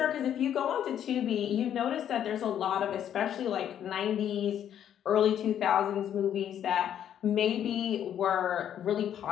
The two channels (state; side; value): quieter; right; 9.9 dB